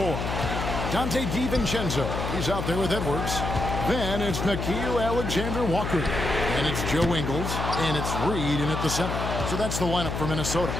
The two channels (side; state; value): left; noise; hum, 3 dB below the sound